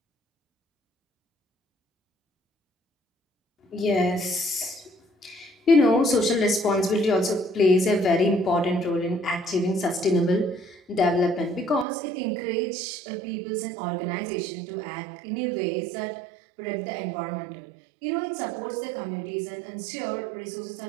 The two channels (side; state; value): left; drops out; at 11.9 s